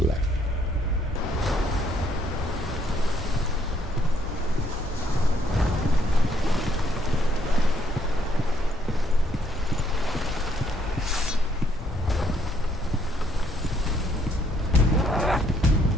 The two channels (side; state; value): both; normal; correlation 0.69